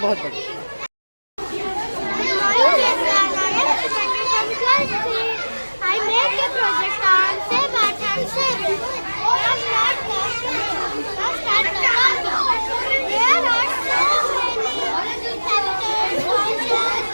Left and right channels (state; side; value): inverted; both; correlation -1.00